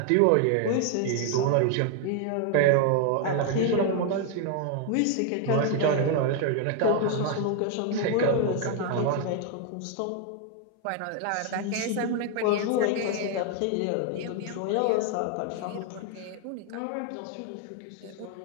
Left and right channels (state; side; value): different; both; correlation 0.00